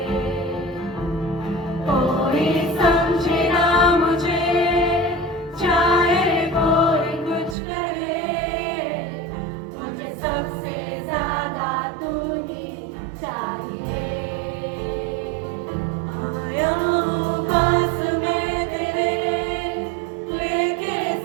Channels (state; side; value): drops out; left; at 7.6 s